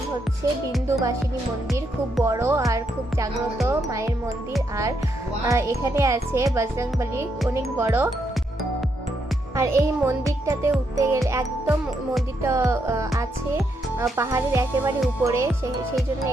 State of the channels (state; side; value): normal; both; correlation 0.78